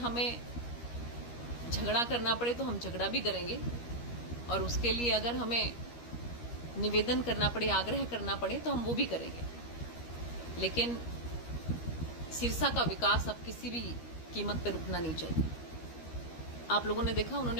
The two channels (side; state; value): right; late; 13 ms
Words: झगड़ा करना पड़े तो हम झगड़ा भी करेंगे, और उसके लिए अगर हमें निवेदन करना पड़े, आग्रह करना पड़े तो हम वो भी करेंगे। लेकिन सिरसा का विकास अब किसी भी कीमत पर रुकना नहीं चाहिए। आप लोगों ने देखा, उन्होंने